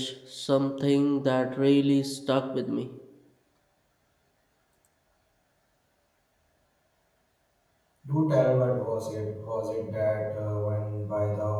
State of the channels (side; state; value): both; identical; correlation 1.00